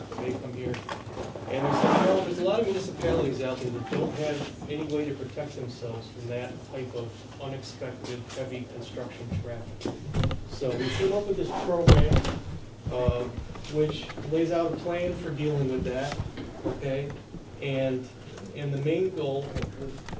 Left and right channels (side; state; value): both; identical; correlation 1.00